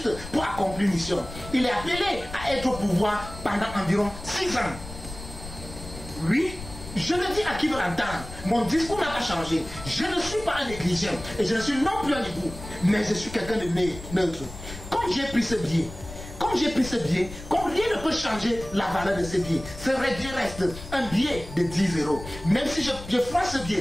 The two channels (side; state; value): left; noise; rumble, 13 dB below the sound